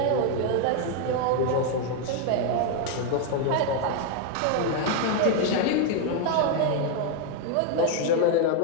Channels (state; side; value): different; both; correlation 0.01